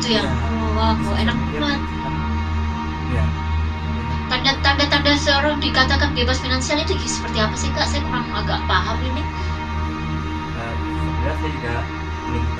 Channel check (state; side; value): identical; both; correlation 1.00